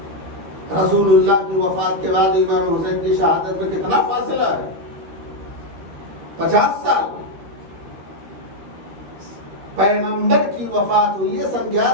رسول اللہ کی وفات کے بعد امام حسین کی شہادت میں کتنا فاصلہ ہے؟ 50 سال۔ پیغمبر کی وفات ہوئی ہے سن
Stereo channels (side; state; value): left; late; 13 ms